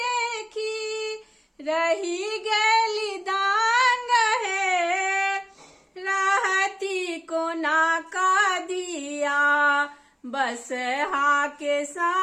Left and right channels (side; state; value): both; identical; correlation 1.00